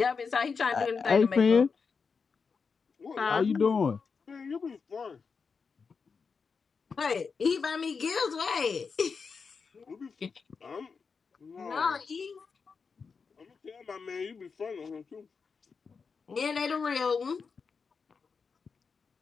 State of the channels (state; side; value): quieter; right; 5.3 dB